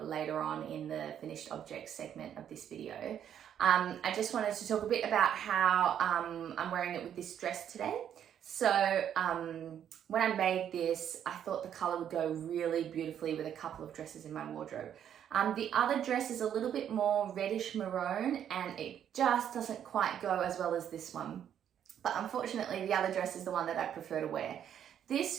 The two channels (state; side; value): quieter; left; 9.5 dB